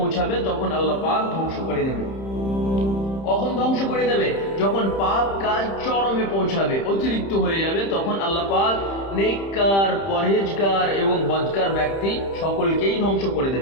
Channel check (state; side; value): late; right; 30 ms